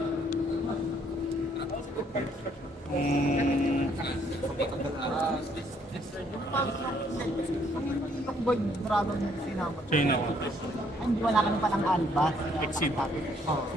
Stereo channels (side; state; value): both; normal; correlation 0.67